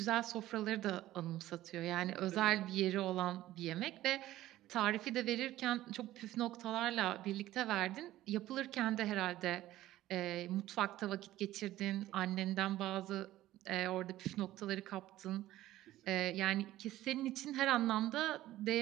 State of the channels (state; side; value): quieter; left; 14.9 dB